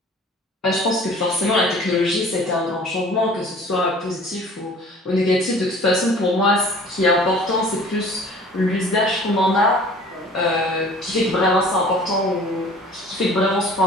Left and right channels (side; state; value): both; normal; correlation 0.48